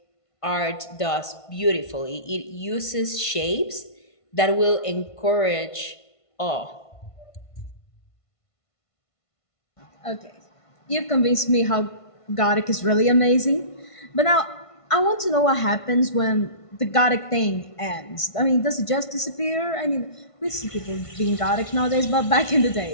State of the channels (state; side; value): late; right; 1.5 ms